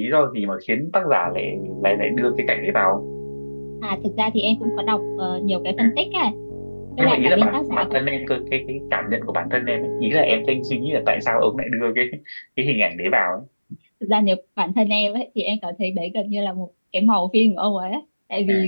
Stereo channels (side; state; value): both; inverted; correlation -1.00